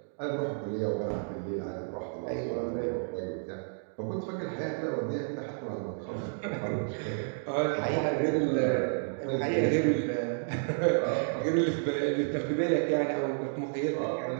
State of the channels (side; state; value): left; silent; digital silence